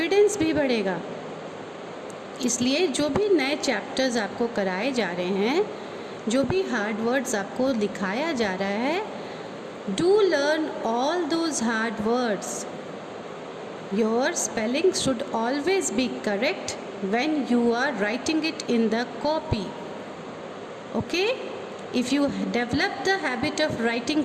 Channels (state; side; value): identical; both; correlation 1.00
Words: भी बढ़ेगा. इसलिए जो भी नए चैप्टर्स आपको कराए जा रहे हैं, जो भी हार्ड वर्ड्स आपको लिखाया जा रहा है, do learn all those hard words. Your spelling should always be correct when you are writing it in the copy. Okay? If you develop the habit of writing